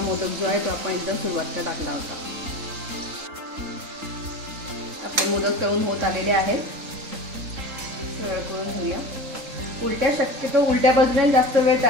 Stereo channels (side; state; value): left; late; 3.8 ms